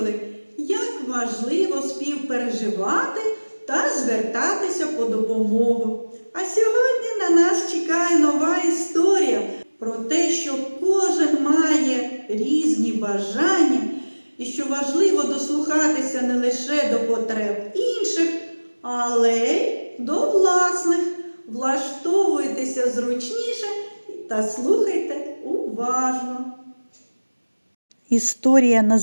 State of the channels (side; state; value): both; inverted; correlation -1.00